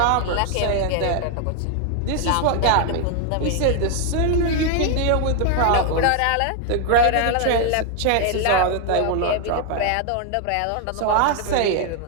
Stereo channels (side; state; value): both; different; correlation 0.00